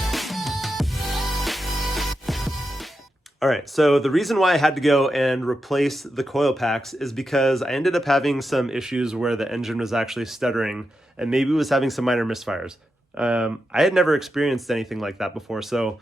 All right, so the reason why I had to go and replace the coil packs is because I ended up having some issues where the engine was actually stuttering and maybe was having some minor misfires. I had never experienced anything like that before, so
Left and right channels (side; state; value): both; normal; correlation 0.88